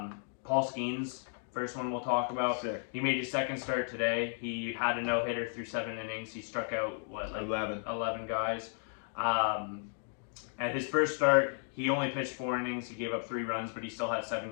Skeens, first one we'll talk about. Sick. He made his second start today. He had a no-hitter through 7 innings. He struck out 11 guys. At his first start, he only pitched 4 innings. He gave up 3 runs, but he still had 7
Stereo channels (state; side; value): silent; right; 55 dB below the other